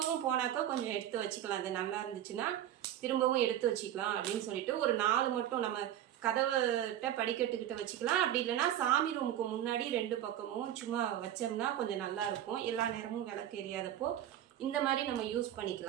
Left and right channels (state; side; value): quieter; left; 11.5 dB